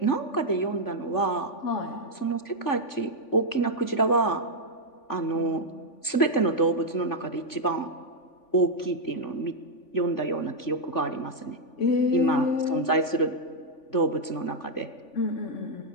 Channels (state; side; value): late; right; 3.5 ms